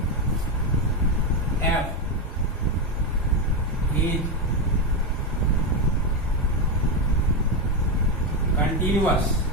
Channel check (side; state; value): both; normal; correlation 0.09